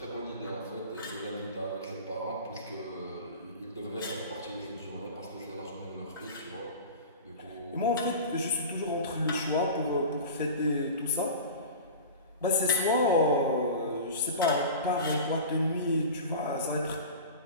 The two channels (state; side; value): inverted; both; correlation -0.34